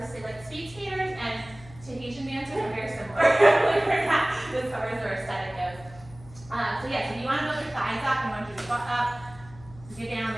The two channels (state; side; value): noise; left; hum, 20 dB below the sound